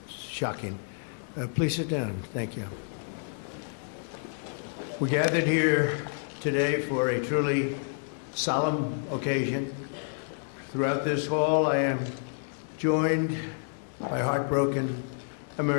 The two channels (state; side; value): silent; right; digital silence